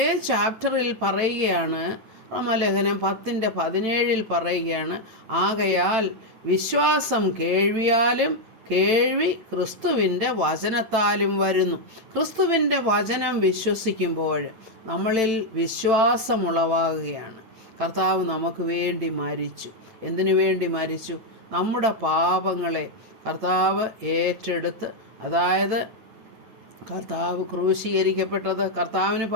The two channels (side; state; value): left; late; 9.0 ms